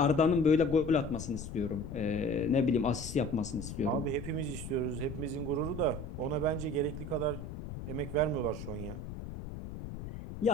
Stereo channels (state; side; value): noise; left; rumble, 9 dB below the sound